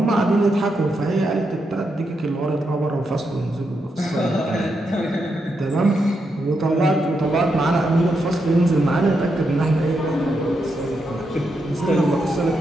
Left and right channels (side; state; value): both; normal; correlation 0.83